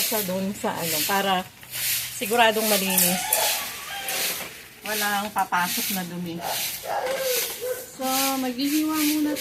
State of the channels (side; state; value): both; identical; correlation 1.00